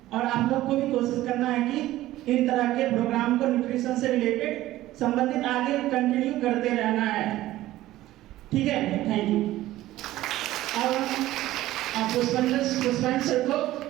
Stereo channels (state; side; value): quieter; left; 15.5 dB